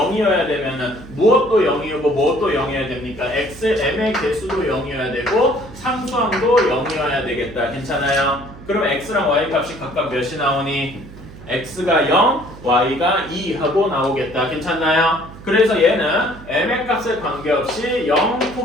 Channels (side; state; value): right; noise; hum, 17 dB below the sound